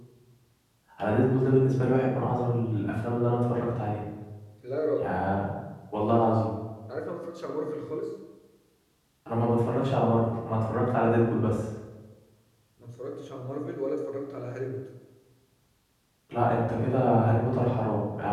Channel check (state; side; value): identical; both; correlation 1.00